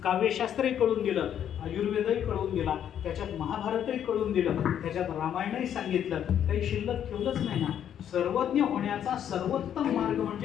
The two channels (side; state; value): right; quieter; 9.7 dB